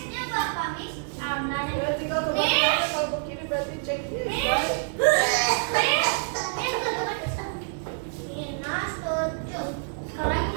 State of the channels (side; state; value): left; silent; digital silence